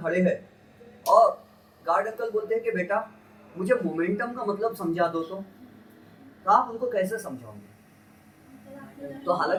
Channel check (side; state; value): both; identical; correlation 1.00